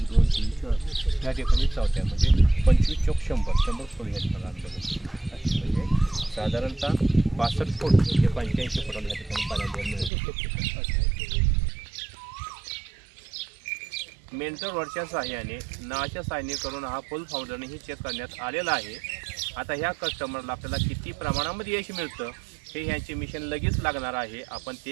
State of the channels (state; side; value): drops out; left; at 10.1 s